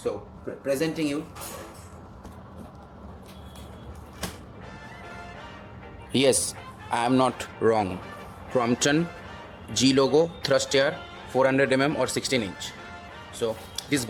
presenting you. Yes, I am not wrong. Crompton G logo thrust air 400 or 16 inch. So this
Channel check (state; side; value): identical; both; correlation 1.00